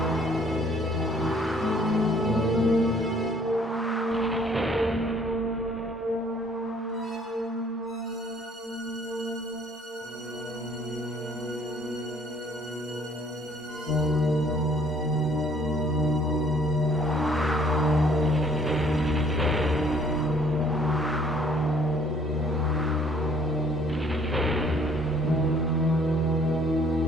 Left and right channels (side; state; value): both; normal; correlation 0.59